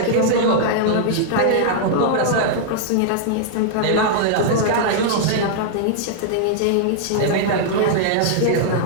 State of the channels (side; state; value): both; different; correlation -0.01